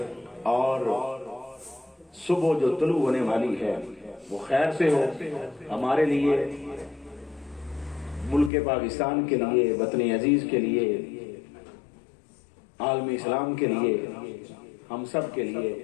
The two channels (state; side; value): drops out; right; at 8.5 s